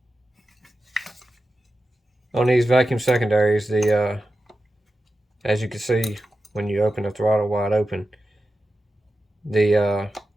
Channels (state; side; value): normal; both; correlation 0.92